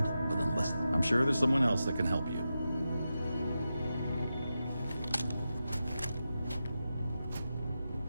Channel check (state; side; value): inverted; both; correlation -0.90